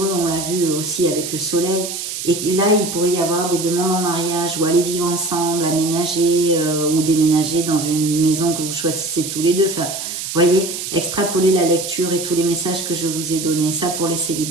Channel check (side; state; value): right; noise; hiss, 6 dB below the sound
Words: on l'a vu aussi avec le soleil. Et là, il pourrait y avoir des demandes en mariage ou aller vivre ensemble, aménager ou déménager dans une maison que vous choisissez tous les deux. Enfin, vous voyez, extrapoler la lecture et tous les messages que je vous ai donnés, ça pour les